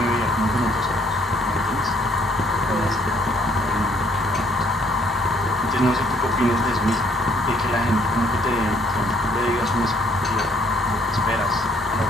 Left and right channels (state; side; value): normal; both; correlation 0.64